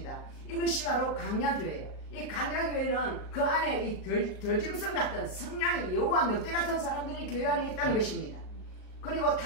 이것이 바로 강야교회예요. 이 강야교회는 그 안에 이 덜짐승 같은 성량이 여우와 늑대 같은 사람들이 교회 안에 있다는 것입니다. 그리고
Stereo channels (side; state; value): right; late; 38 ms